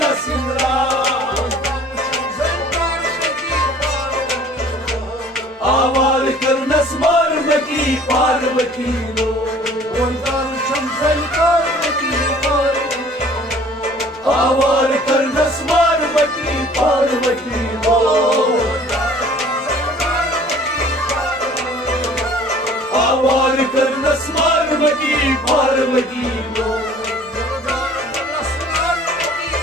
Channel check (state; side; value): normal; both; correlation 0.52